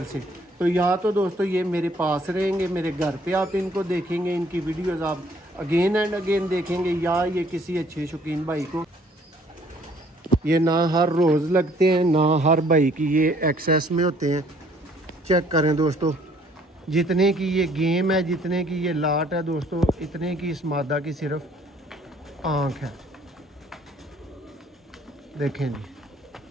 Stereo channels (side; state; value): both; normal; correlation 0.60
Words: से, तो या तो दोस्तों ये मेरे पास रहेंगे, मेरे घर पे आप इनको देखेंगे, इनकी वीडियोस आप अगेन एंड अगेन देखेंगे, या ये किसी अच्छे शौकीन भाई को, ये ना हर रोज़ लगते हैं ना हर भाई की ये एक्सेस में होते हैं। चेक करें दोस्तों, जितने की ये गेम है, जितने की ये लाट है दोस्तों, इतने की इस मादा की सिर्फ आँख है। देखें